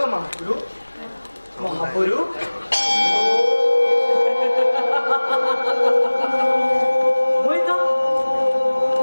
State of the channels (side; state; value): both; inverted; correlation -1.00